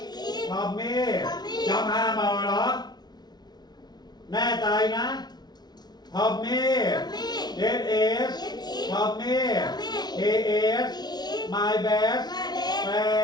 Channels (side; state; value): right; late; 0.20 ms